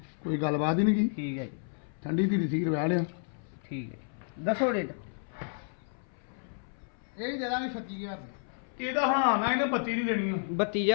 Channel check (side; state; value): right; silent; 57 dB below the other